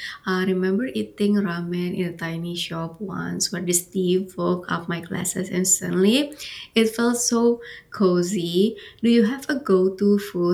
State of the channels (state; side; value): identical; both; correlation 1.00